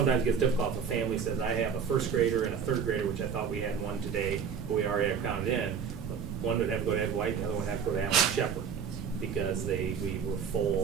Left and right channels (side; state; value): left; quieter; 6.9 dB